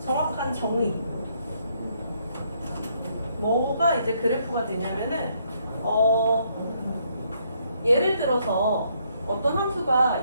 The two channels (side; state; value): both; inverted; correlation -0.71